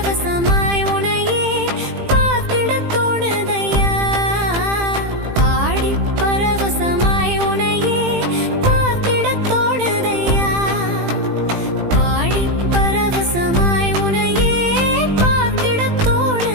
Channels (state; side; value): late; left; 18 ms